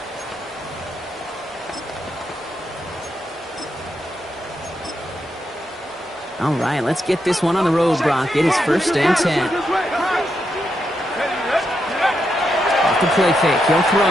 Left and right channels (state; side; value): normal; both; correlation 0.83